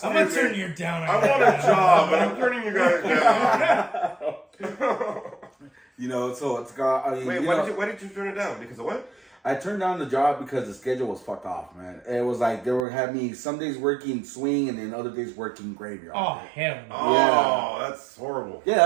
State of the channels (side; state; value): left; drops out; at 12.8 s